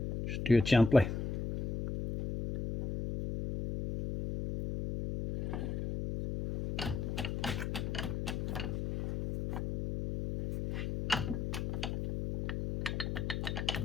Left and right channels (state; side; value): noise; left; hum, 2 dB below the sound